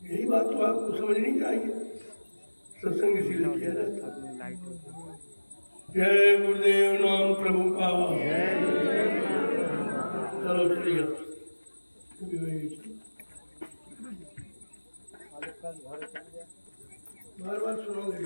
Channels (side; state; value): both; inverted; correlation -1.00